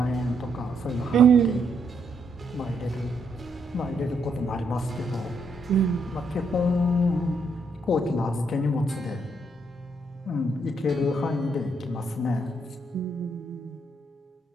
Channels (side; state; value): both; normal; correlation 0.75